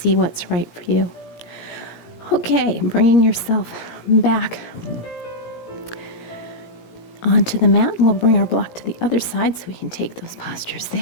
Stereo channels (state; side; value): late; right; 17 ms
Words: what's right for you. Okay, bringing yourself back onto the mat. We'll bring our block to the other side so we can take those postures